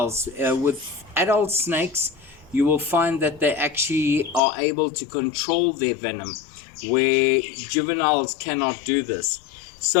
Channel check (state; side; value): drops out; right; at 4.4 s